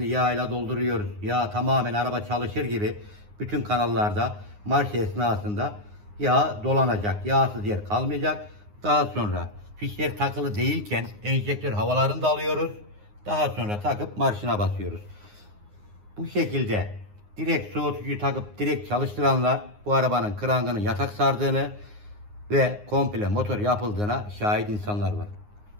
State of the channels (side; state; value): left; late; 9.6 ms